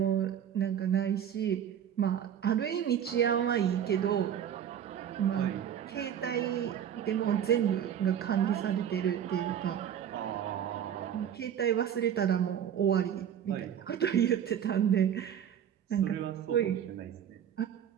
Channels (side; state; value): left; quieter; 9.3 dB